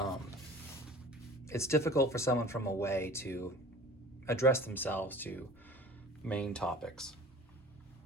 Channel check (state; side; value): normal; both; correlation 0.43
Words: it's difficult for someone from away to address themselves to Maine topics.